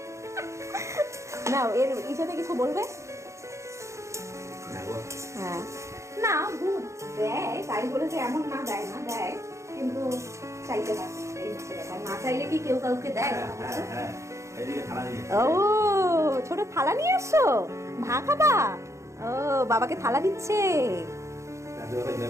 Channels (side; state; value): left; late; 0.14 ms